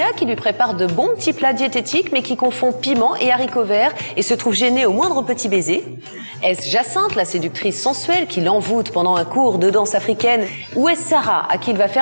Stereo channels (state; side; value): inverted; both; correlation -1.00